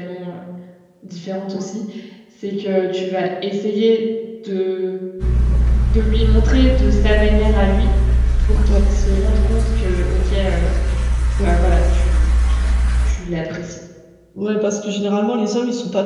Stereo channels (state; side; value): identical; both; correlation 1.00